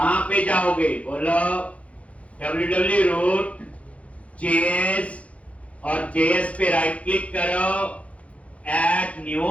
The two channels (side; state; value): right; late; 0.064 ms